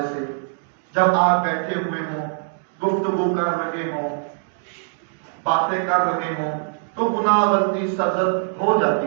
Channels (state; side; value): silent; left; 63 dB below the other